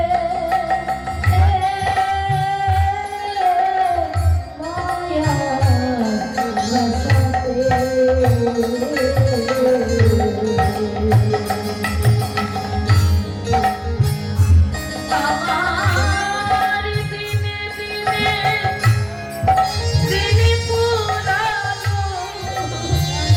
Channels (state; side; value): identical; both; correlation 1.00